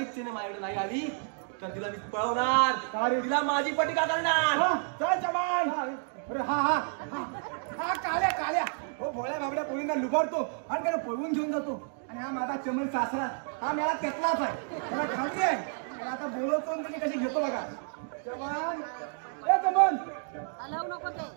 माझ्याकडे नाही आली तर तिला मी पळवणार. तिला माझी पटिका करणार. चल चमान. अरे हा काळ्या हो भोळ्या बाबड्या पोरींना लुबाडतो आणि त्याला पळवून घेऊन जातो. आणि हा माझा चमन सासरा, हा मला तेतलाच आहे, मला खात्री आहे. त्याला आता बोलवतो आणि तुम्ही कशी घेतो बघा. चमन चमन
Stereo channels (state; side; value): silent; left; 58 dB below the other